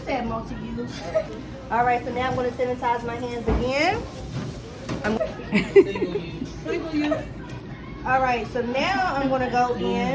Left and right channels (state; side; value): identical; both; correlation 1.00